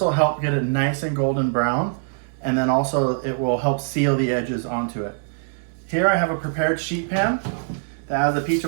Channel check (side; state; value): left; silent; digital silence